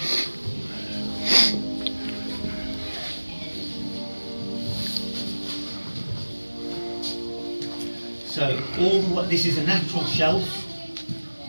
So this is a natural shelf,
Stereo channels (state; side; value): inverted; both; correlation -1.00